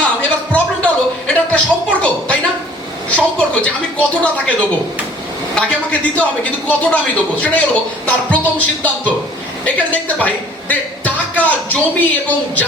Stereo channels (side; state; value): both; normal; correlation 0.52